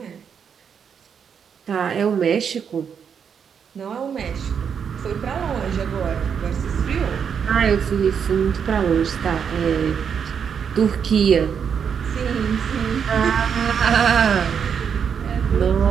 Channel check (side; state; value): left; quieter; 7.2 dB